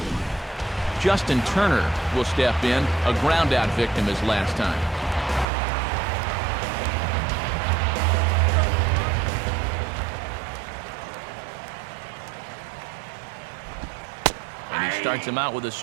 Justin Turner will step in, a ground-out victim his last time. And he starts him out with a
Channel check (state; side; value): drops out; left; at 5.5 s